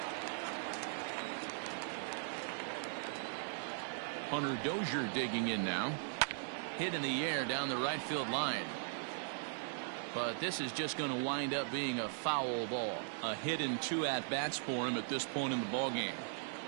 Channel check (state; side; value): silent; left; digital silence